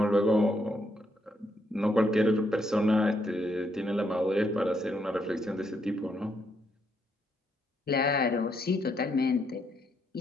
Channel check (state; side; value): normal; both; correlation 0.76